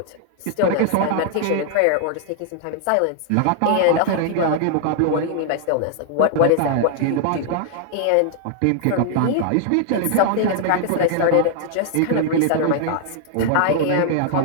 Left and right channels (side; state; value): both; different; correlation -0.01